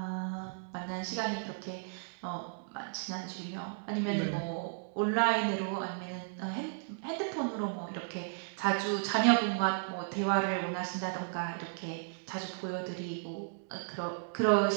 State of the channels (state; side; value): silent; left; digital silence